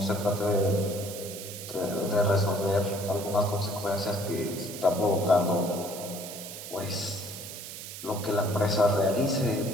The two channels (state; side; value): noise; right; hiss, 10 dB below the sound